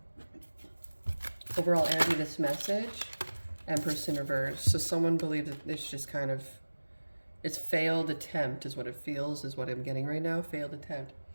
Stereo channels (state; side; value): inverted; both; correlation -1.00